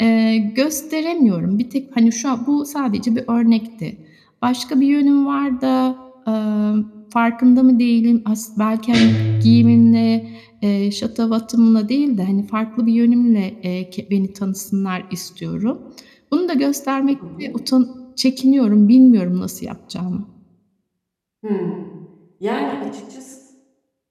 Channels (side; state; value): both; identical; correlation 1.00